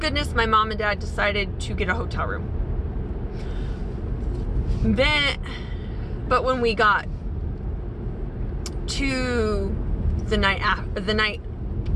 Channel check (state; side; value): identical; both; correlation 1.00